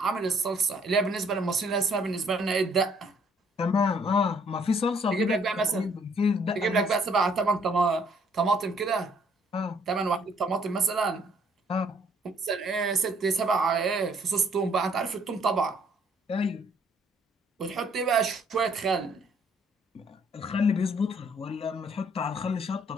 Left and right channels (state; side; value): normal; both; correlation 0.64